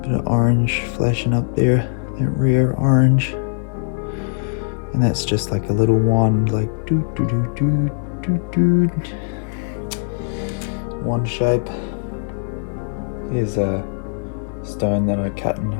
Bit of orange flashing up there, that rear orange. And that's just like a little wand, like doo doo doo doo doo doo. Wand shape. Here's a stone that I cut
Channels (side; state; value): right; silent; digital silence